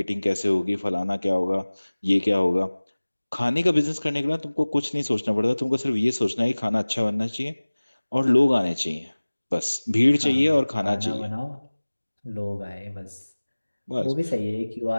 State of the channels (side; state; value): both; inverted; correlation -1.00